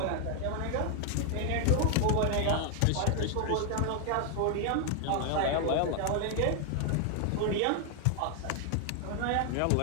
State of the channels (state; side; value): different; both; correlation 0.00